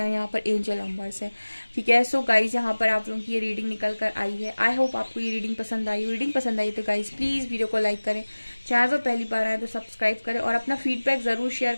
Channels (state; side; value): inverted; both; correlation -1.00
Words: यहाँ पर एंजल नंबर्स है, ठीक है। सो गाइज यहाँ पर आप लोगों की ये रीडिंग निकल कर आई है। आई होप आपको ये रीडिंग पसंद आई। रीडिंग पसंद आई तो गाइज प्लीज वीडियो को लाइक करें, चैनल पर पहली बार आए तो सब्सक्राइब करें और अपना फीडबैक जरूर शेयर